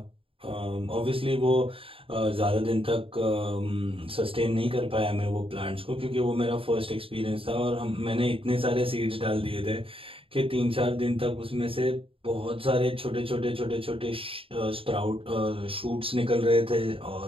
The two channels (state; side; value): late; left; 0.27 ms